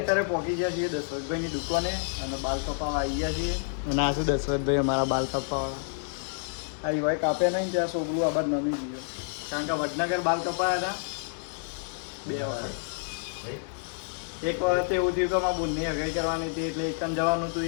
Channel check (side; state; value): right; silent; 59 dB below the other